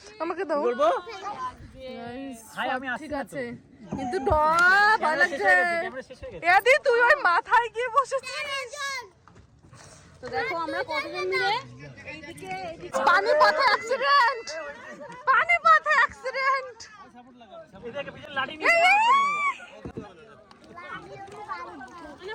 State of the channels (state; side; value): identical; both; correlation 1.00